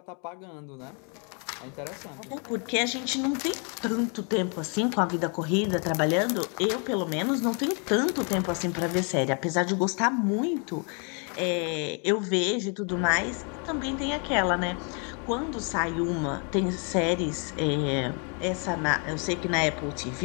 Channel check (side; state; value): right; quieter; 37.7 dB